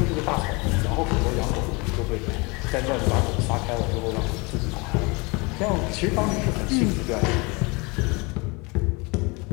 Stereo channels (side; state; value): right; quieter; 27.7 dB